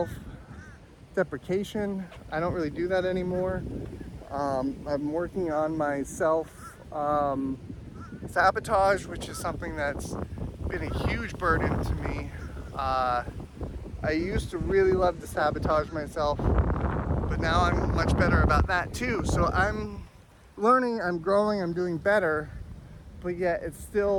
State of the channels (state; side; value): identical; both; correlation 1.00